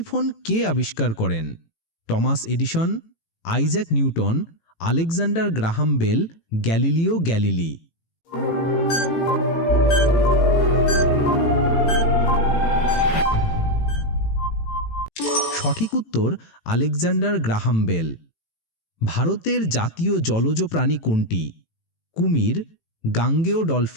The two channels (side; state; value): right; late; 18 ms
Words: কে আবিষ্কার করেন? Thomas Edison, Isaac Newton, Alexander Graham Bell, Galileo Galilei. সঠিক উত্তর আলেকজান্ডার গ্রাহাম বেল। ভারতের জাতীয় জলজ প্রাণী কোনটি? কুমির, গাঙ্গেয়